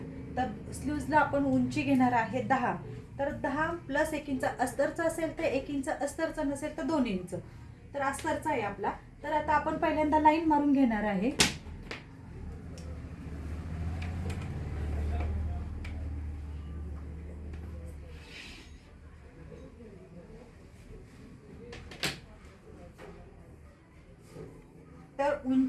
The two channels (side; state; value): both; identical; correlation 1.00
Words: तर स्लूजला आपण उंची घेणार आहे 10। तर 10 + 1 इंच अस्तरचा असेल तर 1 इंच, अस्तरचा नसेल तर 2 इंच। तर अस्तरचा आहे आपला। तर आता आपण पहिल्यांदा लाईन मारून घेणार आहे। तर